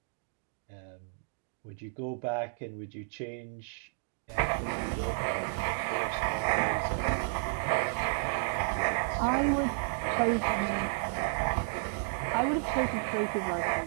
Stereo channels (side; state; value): left; silent; digital silence